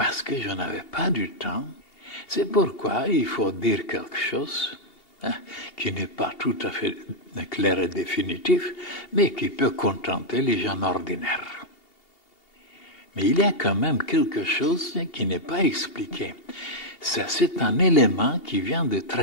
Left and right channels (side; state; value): right; late; 2.8 ms